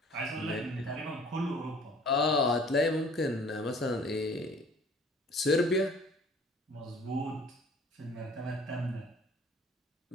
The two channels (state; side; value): normal; both; correlation 0.52